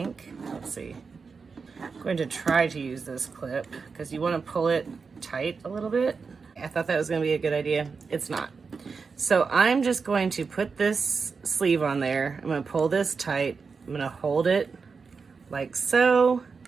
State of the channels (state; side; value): quieter; left; 5.0 dB